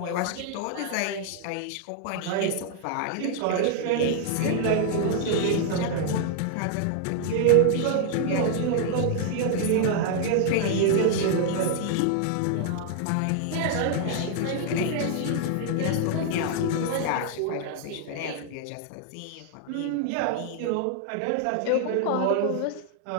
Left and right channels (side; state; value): both; different; correlation 0.00